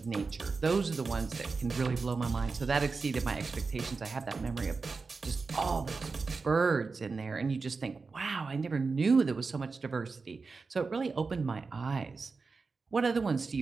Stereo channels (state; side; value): quieter; left; 4.4 dB